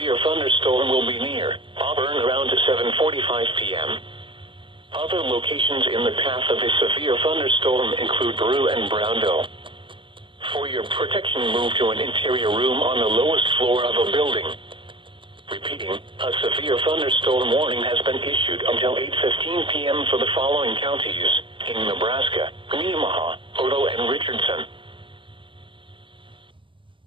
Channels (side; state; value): left; late; 0.25 ms